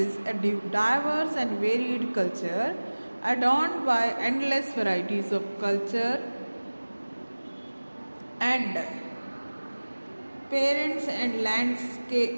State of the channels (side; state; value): both; inverted; correlation -1.00